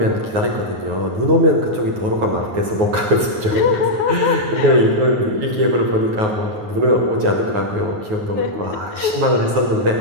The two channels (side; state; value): left; late; 9.4 ms